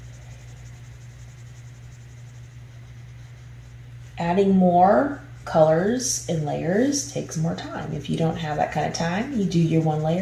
Adding more colors and layers takes more time. If you don't have that kind of time, you do your one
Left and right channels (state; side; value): identical; both; correlation 1.00